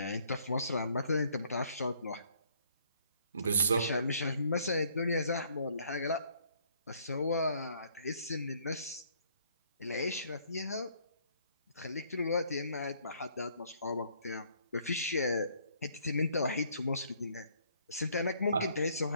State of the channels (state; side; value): inverted; both; correlation -0.64